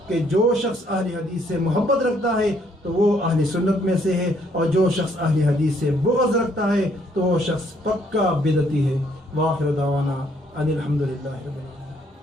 کہ جو شخص اہل حدیث سے محبت رکھتا ہے تو وہ اہل سنت میں سے ہے، اور جو شخص اہل حدیث سے بغض رکھتا ہے تو وہ شخص پکا بدعتی ہے۔ وآخر دعوانا ان الحمدللہ رب العالمین۔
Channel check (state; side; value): normal; both; correlation 0.67